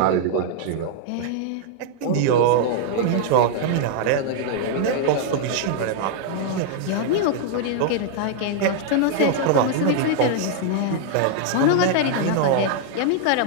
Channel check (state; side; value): different; both; correlation 0.00